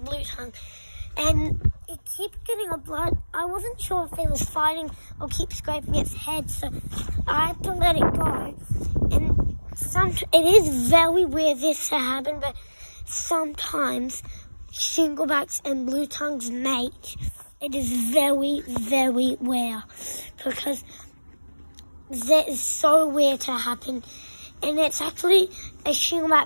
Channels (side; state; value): both; inverted; correlation -1.00